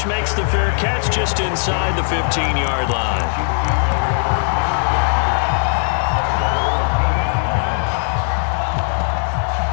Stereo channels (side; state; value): right; silent; digital silence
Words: makes the fair catch just inside the 15-yard line.